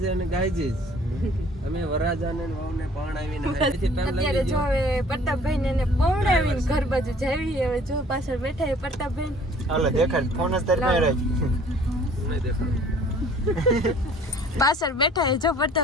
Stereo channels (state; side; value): normal; both; correlation 0.54